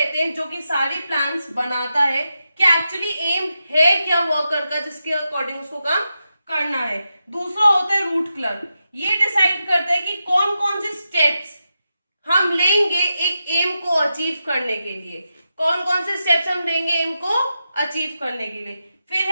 हैं जो कि सारी प्लान्स बनाता है कि एक्चुअली एम है क्या वर्कर का, जिसके अकॉर्डिंग उसको काम करना है। दूसरा होता है रूट क्लर्क, ये डिसाइड करता है कि कौन कौन से स्टेप्स हम लेंगे एक एम को अचीव करने के लिए, कौन कौन से स्टेप्स हम लेंगे एम को अचीव करने के लिए। फिर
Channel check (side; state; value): both; inverted; correlation -0.88